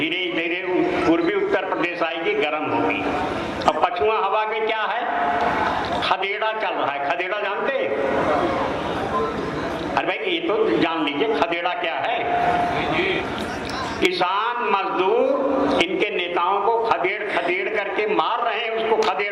धीरे पूर्वी उत्तर प्रदेश आएगी, गर्म होगी। अब पछुआ हवा में क्या है? खदेड़ा चल रहा है। खदेड़ा जानते हैं? अरे भाई ये तो जान लीजिए खदेड़ा क्या है। किसान मजदूर इनके नेताओं को खदेड़ खदेड़ करके मार रहे हैं, उसको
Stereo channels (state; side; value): identical; both; correlation 1.00